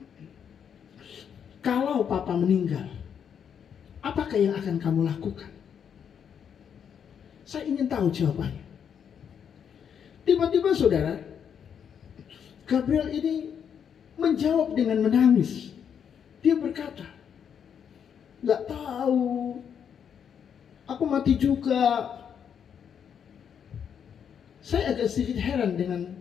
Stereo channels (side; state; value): right; quieter; 7.9 dB